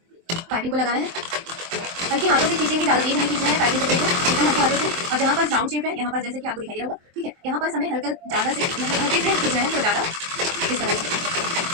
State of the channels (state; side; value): late; left; 23 ms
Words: पाइपिंग को लगाना है। हल्के हाथों से खींचेंगे, ज़्यादा तेज नहीं खींचना है पाइपिंग कपड़े को, एकदम हल्के हाथों से। और जहाँ पर राउंड शेप है, यहाँ पर जैसे कि आपको दिखाई दे रहा होगा, ठीक है, यहाँ पर हमें हल्का ज़्यादा से मतलब हल्के से खींचना है, तो ज़्यादा इस तरह से